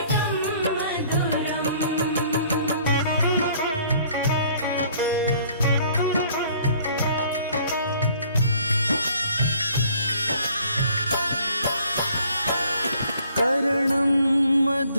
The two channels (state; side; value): inverted; both; correlation -0.58